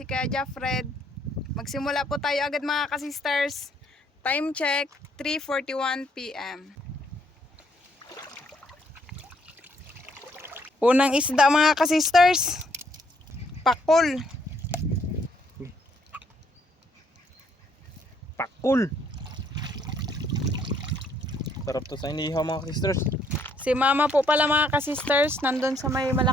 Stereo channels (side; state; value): both; normal; correlation 0.69